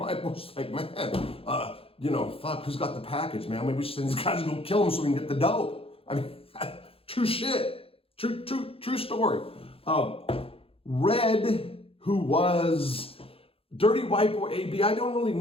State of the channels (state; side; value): late; right; 0.27 ms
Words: Boys like, man, fuck, who's got the package, man? Maybe we should send these guys to go kill them so we can get the dope. I mean, true shit. True story. Red, who was Dirty White Boy AB, I don't really